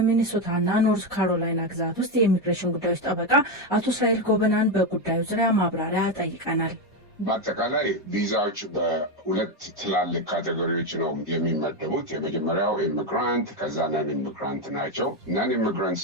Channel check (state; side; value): normal; both; correlation 0.09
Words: ኖርዝ ካሮላይና ግዛት ውስጥ የኢሚግሬሽን ጉዳዮች ጠበቃ አቶ እስራኤል ጎበናን በጉዳዩ ዙሪያ ማብራሪያ ጠይቀናል። በአጠቃላይ ቪዛዎች በሁለት ትላልቅ ካቴጎሪዎች ነው የሚመደቡት። የመጀመሪያው ኢሚግራንት፣ ከዛ ነን ኢሚግራንት ናቸው። ነን ኢሚግራንት